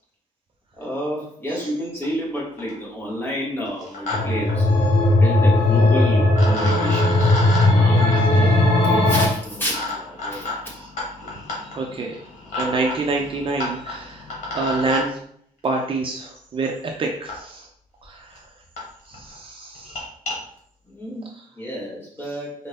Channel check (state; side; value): normal; both; correlation 0.66